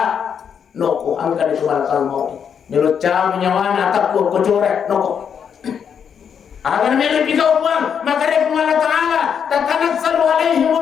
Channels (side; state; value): right; quieter; 7.5 dB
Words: noko angkan itu malakal mau melucap nyawana takut kocorek noko. Agar mereka pikau uang, maka dia Allah Ta'ala tatanazzalu